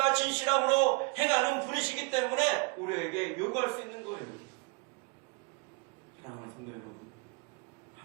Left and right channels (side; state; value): left; quieter; 31.5 dB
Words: 진실함으로 행하는 분이시기 때문에 우리에게 요구할 수 있는 거예요. 사랑하는 성도 여러분,